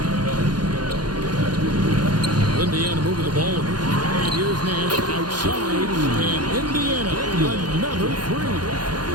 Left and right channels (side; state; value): left; late; 0.70 ms